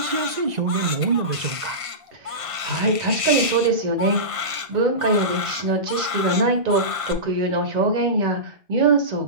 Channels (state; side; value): late; left; 1.5 ms